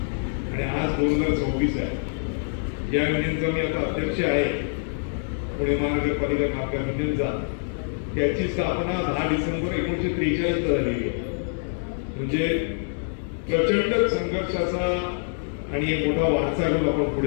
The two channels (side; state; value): right; silent; digital silence